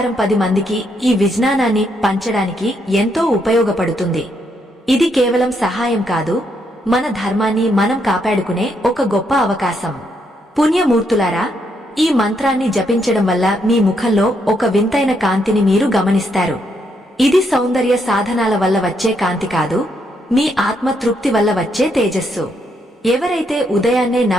10 మందికి ఈ విజ్ఞానాన్ని పంచడానికి ఎంతో ఉపయోగపడుతుంది. ఇది కేవలం సహాయం కాదు, మన ధర్మాన్ని మనం కాపాడుకునే ఒక గొప్ప అవకాశం. పుణ్యమూర్తులారా, ఈ మంత్రాన్ని జపించడం వల్ల మీ ముఖంలో ఒక వింతైన కాంతిని మీరు గమనిస్తారు. ఇది సౌందర్య సాధనాల వల్ల వచ్చే కాంతి కాదు, మీ ఆత్మ తృప్తి వల్ల వచ్చే తేజస్సు. ఎవరైతే ఉదయాన్నే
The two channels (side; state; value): both; normal; correlation 0.76